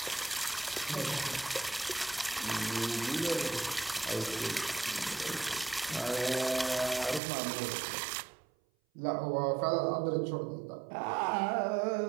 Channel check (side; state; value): left; drops out; at 7.2 s